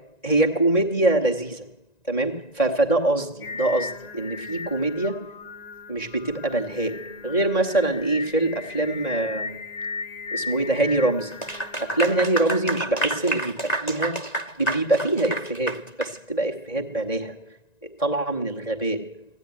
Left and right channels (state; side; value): late; right; 1.9 ms